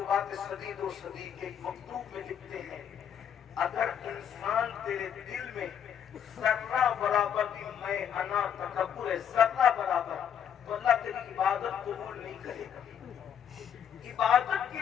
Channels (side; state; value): right; quieter; 8.6 dB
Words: صدید و صدیق کے مکتوب میں لکھتے ہیں، اگر انسان تیرے دل میں ذرہ برابر بھی میں انا تکبر ہے، ذرہ برابر، تو اللہ تیری عبادت قبول نہیں کرے گا۔ عبادت کی